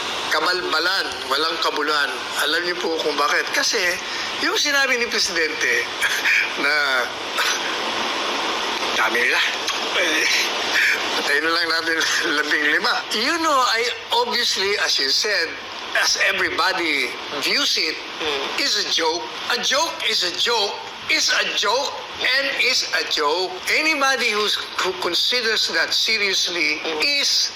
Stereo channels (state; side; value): identical; both; correlation 1.00